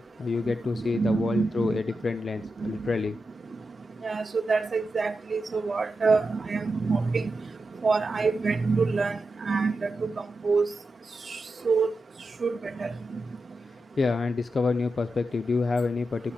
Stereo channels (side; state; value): both; normal; correlation 0.89